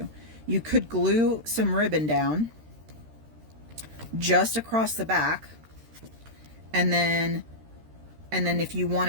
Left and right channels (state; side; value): late; left; 13 ms